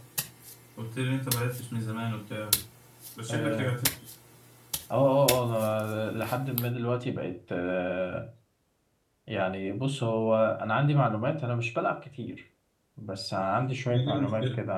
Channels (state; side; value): identical; both; correlation 1.00